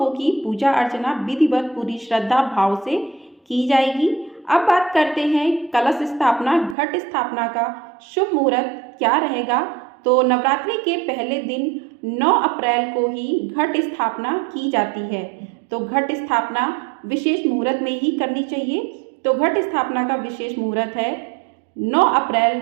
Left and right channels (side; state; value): left; drops out; at 6.8 s